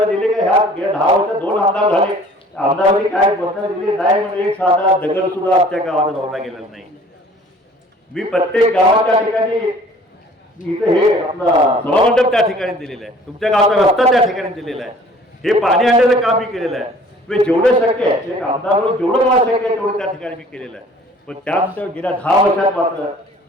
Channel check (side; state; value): both; normal; correlation 0.51